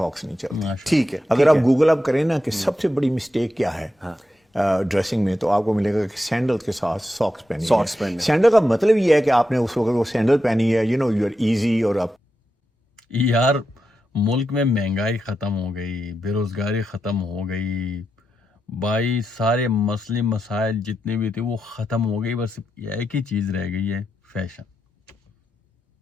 نہیں چلتی. ٹھیک ہے, اگر آپ گوگل اپ کریں نا کہ سب سے بڑی مسٹیک کیا ہے ڈریسنگ میں, تو آپ کو ملے گا کہ سینڈل کے ساتھ ساکس پہنی. سینڈل کا مطلب یہ ہے کہ آپ نے اس وقت وہ سینڈل پہنی ہے, یو آر ایزی. اور آپ یار ملک میں مہنگائی ختم ہو گئی, بے روزگاری ختم ہو گئی بھائی, سارے مسئلے مسائل جتنے بھی تھے وہ ختم ہو گئی. بس ایک ہی چیز رہ گئی ہے, فیشن.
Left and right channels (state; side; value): normal; both; correlation 0.87